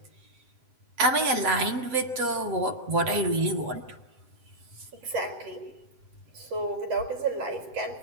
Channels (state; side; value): late; left; 7.9 ms